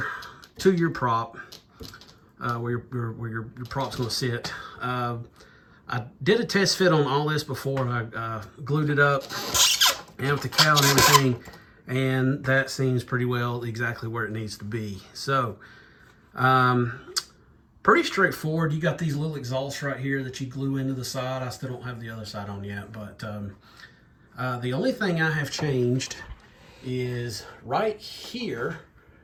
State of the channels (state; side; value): identical; both; correlation 1.00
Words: to your prop. Where your prop's going to sit. I did a test fit on all this before. I glued it up and with the cowl and everything, and that seems pretty well exactly where it needs to be. So pretty straightforward. You got these little exhausts right here that you glue into the side. I still don't have the other side on yet, but the only thing I have changed is right here.